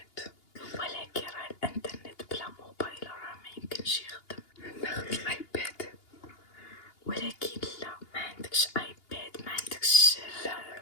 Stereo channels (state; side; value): late; right; 2.8 ms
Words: ولكن راه الانترنت بلا موبايل راه ما يمكنش يخدم. ناخد الايباد. ولكن لا، ما عندكش ايباد، ما عندكش لا